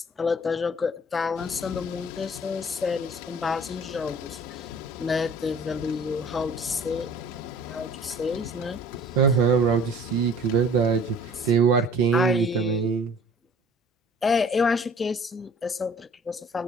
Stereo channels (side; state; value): both; normal; correlation 0.50